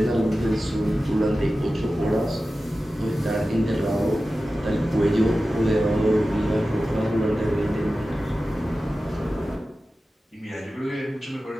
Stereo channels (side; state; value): both; normal; correlation 0.94